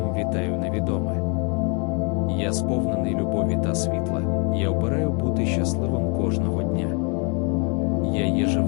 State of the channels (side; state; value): right; quieter; 32.6 dB